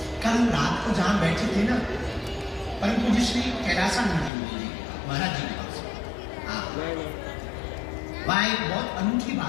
कल रात को जहां बैठे थे ना, परम पूज्य श्री कैलासानंद जी महाराज जी के पास, वहां एक बहुत अनूठी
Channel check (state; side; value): drops out; right; at 4.3 s